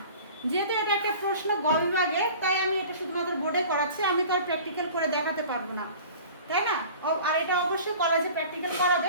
যেহেতু এটা একটা প্রশ্ন গ বিভাগে, তাই আমি এটা শুধুমাত্র বোর্ডে করাচ্ছি, আমি তো আর প্র্যাকটিক্যাল করে দেখাতে পারবো না, তাই না? আর এটা অবশ্যই কলেজে প্র্যাকটিক্যাল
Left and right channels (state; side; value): inverted; both; correlation -0.42